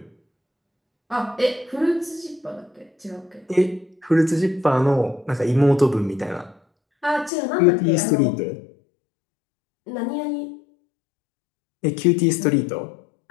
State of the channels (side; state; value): right; drops out; at 7.3 s